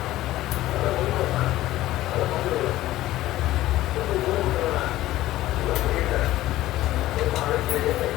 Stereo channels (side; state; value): right; quieter; 15.5 dB